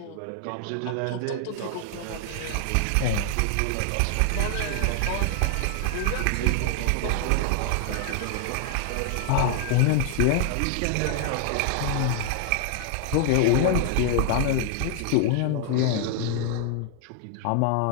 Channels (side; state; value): both; different; correlation 0.00